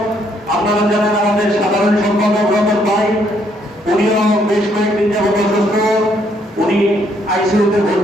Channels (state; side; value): normal; both; correlation 0.70